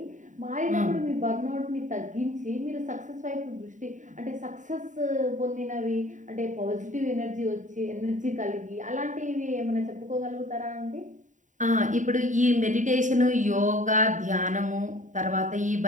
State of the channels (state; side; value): late; left; 0.36 ms